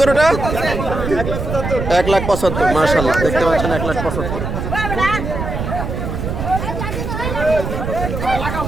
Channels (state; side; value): noise; right; rumble, 4 dB below the sound